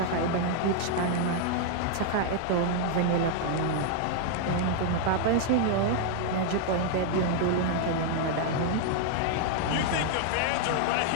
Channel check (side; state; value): both; different; correlation 0.00